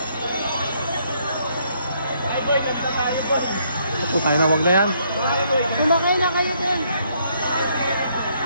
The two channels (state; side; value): inverted; both; correlation -0.70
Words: Ako tayo na, wag na yan. Kumakay na kayo din.